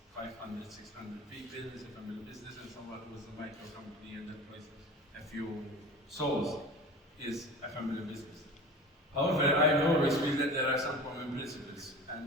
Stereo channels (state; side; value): normal; both; correlation 0.36